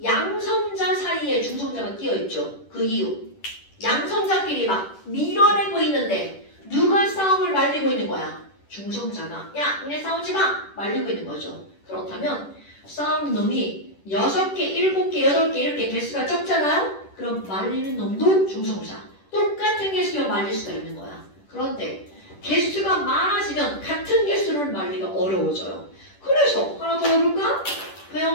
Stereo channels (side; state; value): right; late; 10 ms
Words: 양성자 사이에 중성자가 끼어있죠. 그 이유 양성자끼리 막 밀어내고 있는데 누가 싸움을 말리고 있는 거야? 중성자가 야 니네 싸우지 마! 말리고 있는 거죠. 그렇다면 싸우는 놈이 6개, 7개, 8개 이렇게 개수가 적잖아요? 그럼 말리는 놈도 중성자 똑같은 개수면 말릴 수가 있는 거야. 그런데 개수가 많아지면 같은 개수를 말리기가 어려워져요. 그래서 하나 더 해볼까?